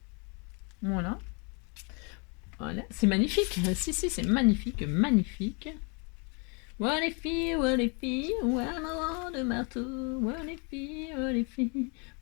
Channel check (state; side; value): quieter; right; 34.4 dB